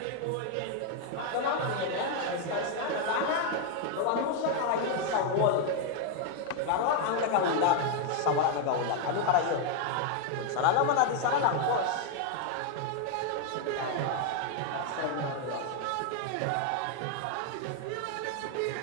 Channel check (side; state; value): both; different; correlation 0.01